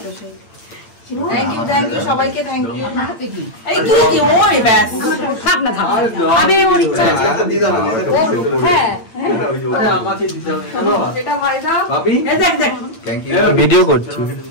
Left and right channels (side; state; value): right; late; 8.8 ms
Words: তো সেই থ্যাংক ইউ সবাইকে থ্যাংক ইউ এই তুই কি ওই ব্যাস থাক না থাক আমি ওর ইচ্ছা আছে दी दो হ্যাঁ আরে আমাকে দিতে হবে চলো এটা ভাই দাও भाभी এই দেখ দেখ थैंक यू